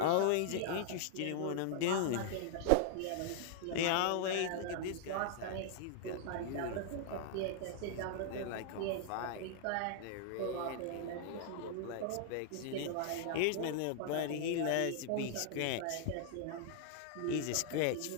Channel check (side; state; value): both; different; correlation -0.01